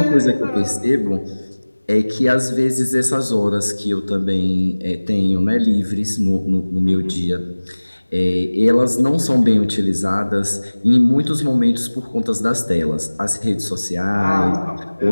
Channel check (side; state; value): both; inverted; correlation -1.00